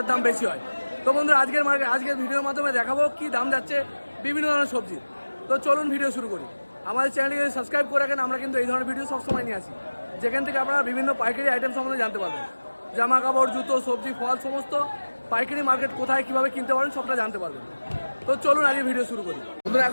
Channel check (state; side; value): inverted; both; correlation -1.00